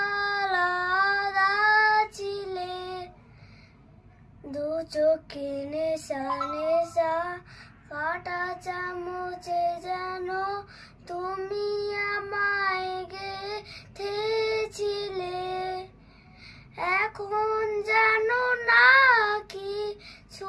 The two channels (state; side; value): identical; both; correlation 1.00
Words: ছিলে, দু চোখে নেশা নেশা কাটা চামচে যেন তুমি আমায় গেথেছিলে। এখন জানো না কি